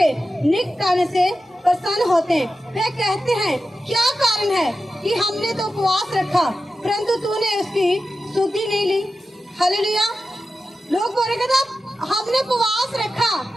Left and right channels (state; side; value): normal; both; correlation 0.92